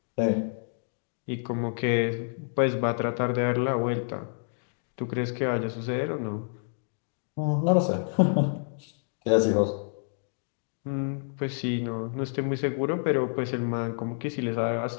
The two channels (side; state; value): right; silent; digital silence